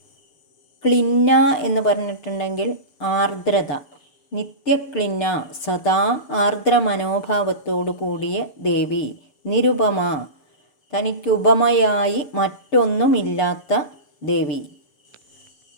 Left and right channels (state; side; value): late; right; 7.0 ms